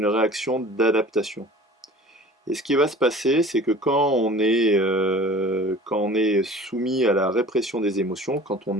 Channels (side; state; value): both; normal; correlation 0.44